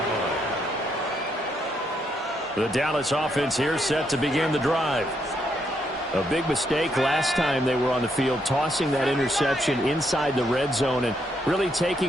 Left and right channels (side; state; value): both; normal; correlation 0.76